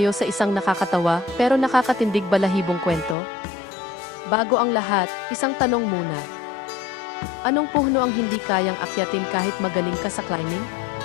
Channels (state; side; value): drops out; right; at 3.2 s